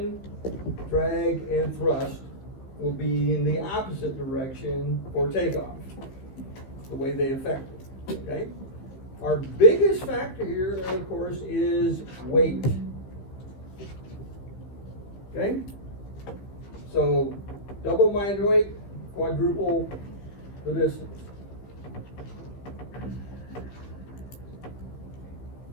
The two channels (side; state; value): right; late; 15 ms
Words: drag, and thrust will be in the opposite direction for takeoff, the way they affect it. Okay? Our biggest factor here, of course, is weight. Okay? So, double my weight, quadruple the distance.